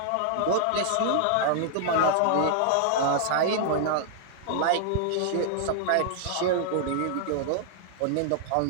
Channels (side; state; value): both; different; correlation -0.01